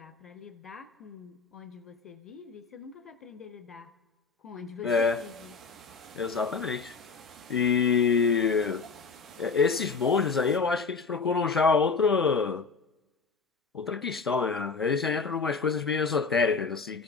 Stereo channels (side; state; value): right; quieter; 4.9 dB